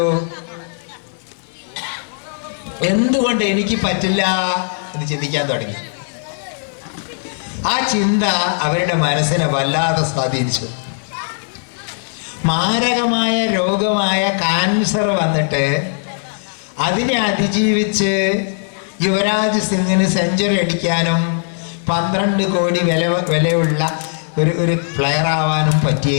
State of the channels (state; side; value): silent; right; digital silence